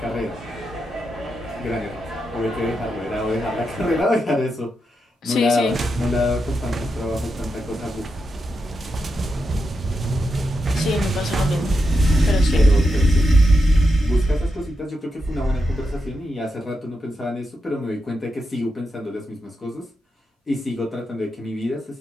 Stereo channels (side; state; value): both; normal; correlation 0.86